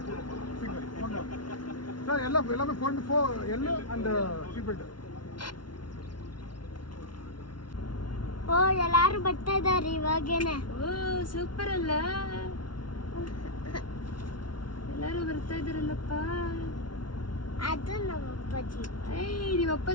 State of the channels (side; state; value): right; late; 0.71 ms